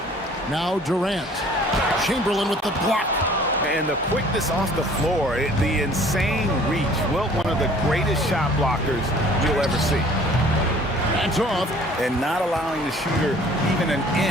Now Durant. Chamberlain with the block. And the quickness off the floor, the insane reach. Wilt, one of the greatest shot blockers you'll ever see. That's off. And not allowing the shooter even an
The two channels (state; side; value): normal; both; correlation 0.53